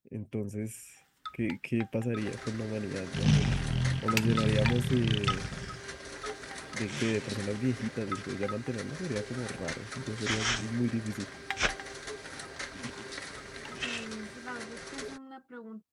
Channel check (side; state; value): both; identical; correlation 1.00